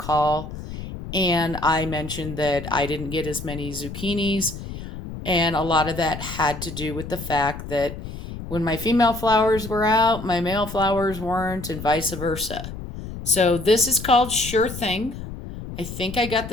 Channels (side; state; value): left; noise; rumble, 10 dB below the sound